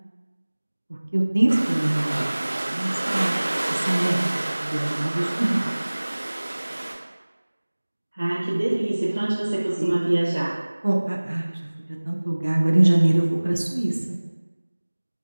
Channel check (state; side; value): inverted; both; correlation -1.00